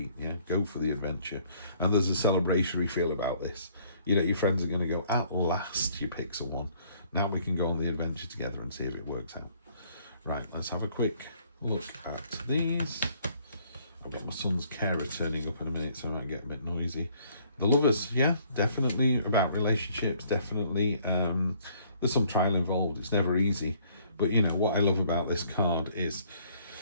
yeah? Go for the adventure. And there's a celebratory feel about this. You know, your friends are going to go, at last you pick someone. Now we can go on the adventure together and see if it works out. Right, let's have a quick look at these. I've got my son's carer turning up in a minute, so I might get a bit noisy. The Lovers, yeah, definitely about relationships, definitely. There's some trial involved. It's never easy. But, you know, what I love about this card is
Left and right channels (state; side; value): inverted; both; correlation -0.62